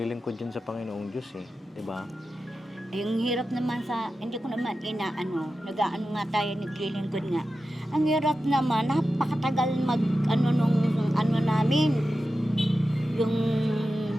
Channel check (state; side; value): normal; both; correlation 0.92